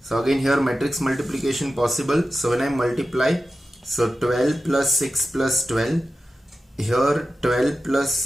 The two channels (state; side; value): normal; both; correlation 0.93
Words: again here matrix multiplication possible. So when I multiply, so 12 plus 6 plus 12, here 12 plus